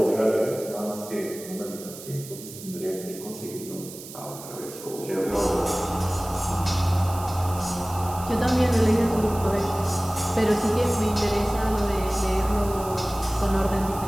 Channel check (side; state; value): right; noise; hiss, 14 dB below the sound